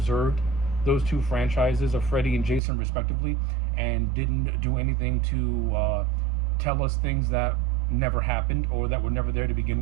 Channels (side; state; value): left; drops out; at 2.6 s